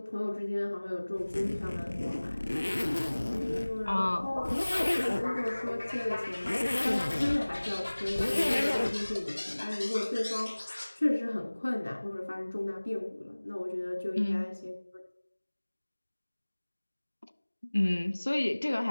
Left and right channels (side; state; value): both; inverted; correlation -1.00